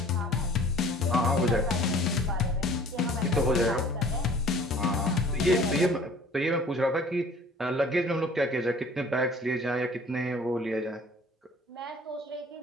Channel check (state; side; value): normal; both; correlation 0.50